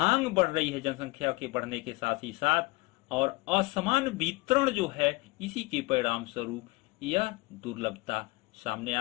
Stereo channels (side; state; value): right; quieter; 24.4 dB